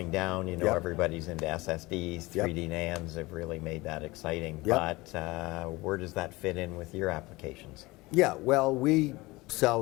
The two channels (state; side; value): quieter; right; 21.8 dB